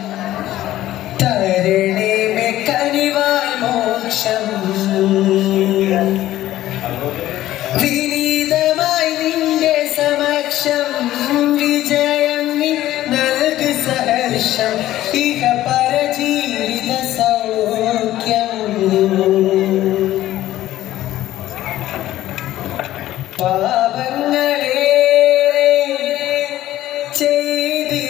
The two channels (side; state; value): right; quieter; 14.3 dB